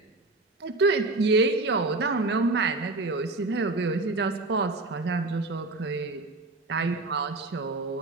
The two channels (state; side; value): quieter; left; 3.2 dB